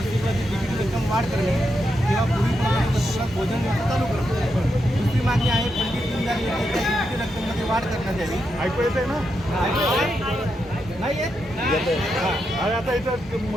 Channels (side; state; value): both; normal; correlation 0.84